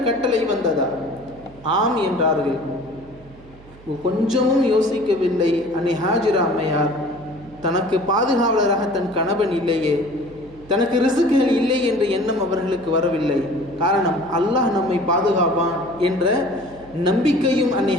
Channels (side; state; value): right; noise; hum, 22 dB below the sound